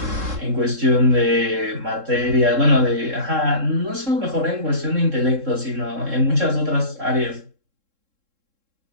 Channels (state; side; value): late; left; 3.7 ms